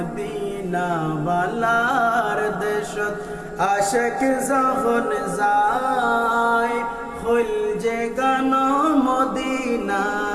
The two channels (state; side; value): identical; both; correlation 1.00